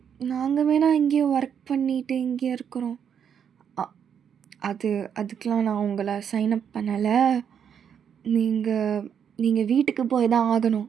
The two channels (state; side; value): quieter; left; 8.0 dB